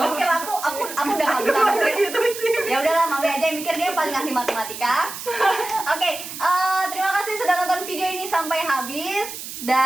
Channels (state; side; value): noise; right; hiss, 10 dB below the sound